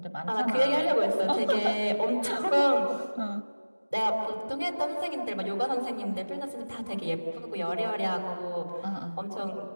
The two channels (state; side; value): inverted; both; correlation -1.00